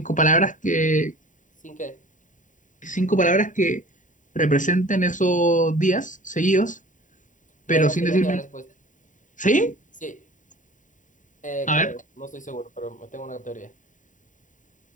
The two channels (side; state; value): right; late; 0.37 ms